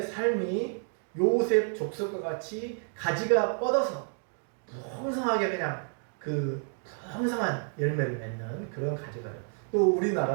삶이 요셉 족속과 같이 가지가 뻗어서 풍성하게 그냥 그 풍성한 열매를 맺는 그런 가지가 돼요. 또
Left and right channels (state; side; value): silent; left; 58 dB below the other